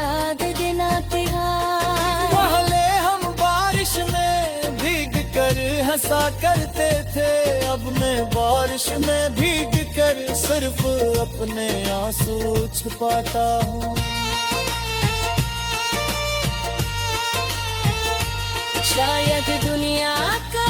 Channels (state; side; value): identical; both; correlation 1.00